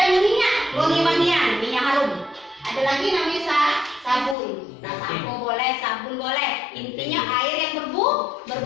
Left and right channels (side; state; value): right; drops out; at 4.4 s